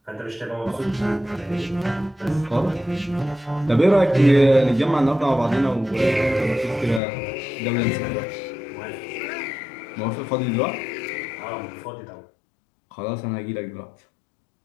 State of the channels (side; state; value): right; drops out; at 7.0 s